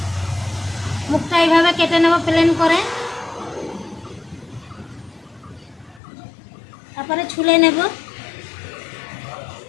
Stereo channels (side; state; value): right; drops out; at 6.0 s